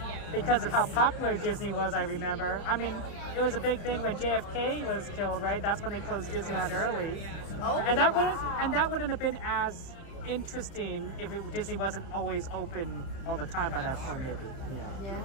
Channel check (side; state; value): right; late; 30 ms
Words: because of how popular Disney was, I remember. I mean, it was a big thing when JFK was killed, right? That's when they closed Disneyland early. Oh, and that wouldn't have been as interesting if Disney wasn't always open all the time by that point, maybe. Yeah,